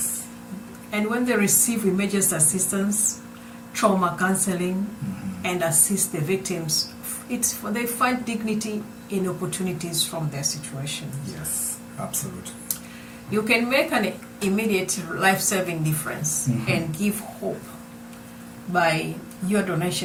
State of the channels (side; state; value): both; identical; correlation 1.00